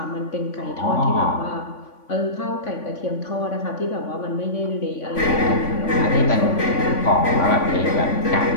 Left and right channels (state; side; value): late; right; 3.5 ms